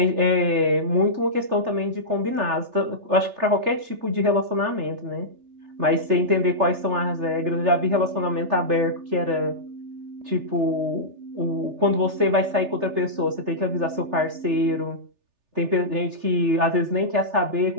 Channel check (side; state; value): left; late; 3.4 ms